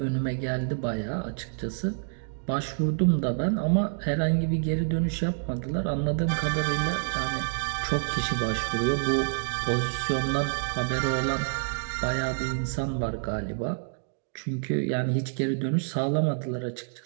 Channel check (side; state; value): left; silent; digital silence